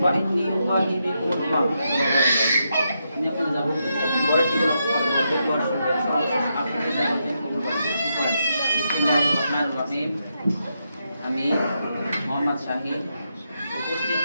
فإني أباهي بكم الأمم ini আপনারা যাব বড় টিকে বড় শুনবেন আপনাদের যাবেন বিসমিল্লাহিররহমানিররহিম আমি মোহাম্মদ শাহিদ উপস্থিত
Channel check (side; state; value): both; inverted; correlation -0.83